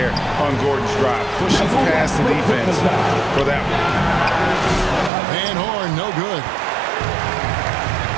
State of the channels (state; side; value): drops out; left; at 5.1 s